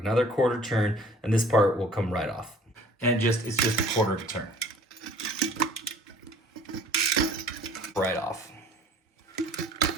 quarter turn, and this part will come right off. And it's just a quarter of a turn. Right off.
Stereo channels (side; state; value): both; normal; correlation 0.51